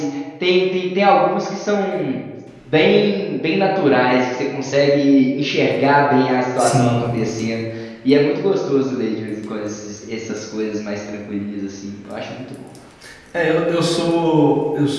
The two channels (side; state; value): both; identical; correlation 1.00